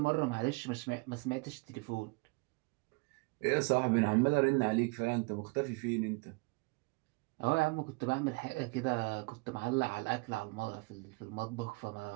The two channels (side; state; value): left; quieter; 28.3 dB